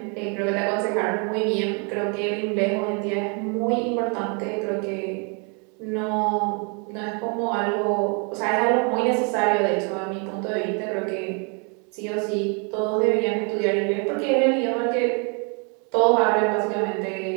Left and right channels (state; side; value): quieter; left; 35.8 dB